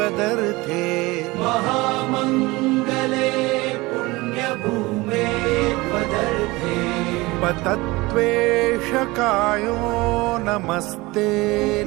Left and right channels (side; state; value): left; quieter; 21.9 dB